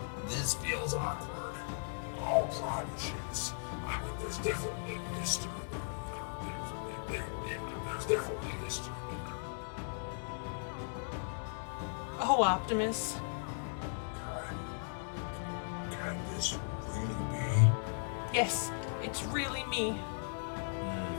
This feels awkward. Oh, Primus, yes. I mean, there's definitely history there. You know, there's definitely history there. Oh, Optimus. Can this really be? Yes, it's really me.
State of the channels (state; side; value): silent; right; 53 dB below the other